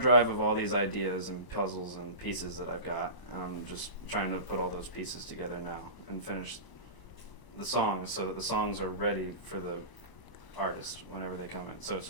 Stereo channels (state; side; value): late; right; 1.0 ms